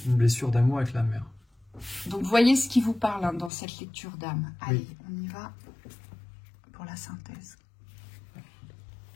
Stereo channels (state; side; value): drops out; right; at 3.5 s